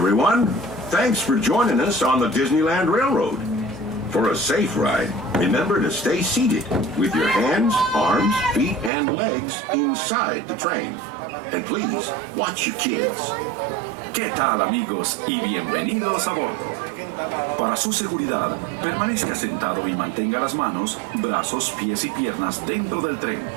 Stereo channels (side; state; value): left; drops out; at 8.9 s